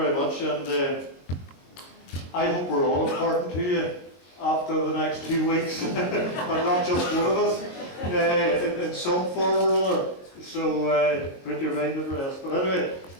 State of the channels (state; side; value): late; right; 22 ms